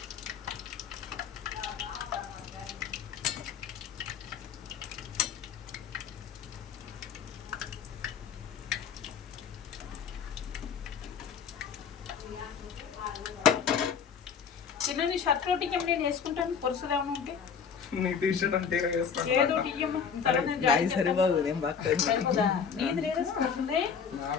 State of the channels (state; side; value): quieter; right; 6.7 dB